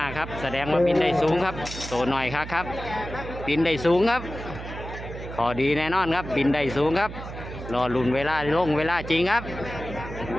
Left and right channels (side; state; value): right; noise; hum, 10 dB below the sound